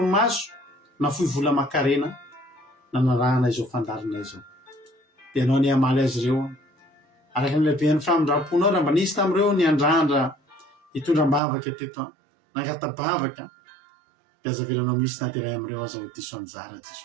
nafoy vola makarena nanarahana izao fandarina izao. Dia ianao any amaly azy ireo araka ny lehiben'ny famindraponao raha mba nisy tamin'ireo ny andrandra hitondram-bavaka teto nangatabavaka, dia azavelanao misy na dia ray amin'ireo aza ho diso anjara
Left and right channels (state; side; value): drops out; left; at 11.4 s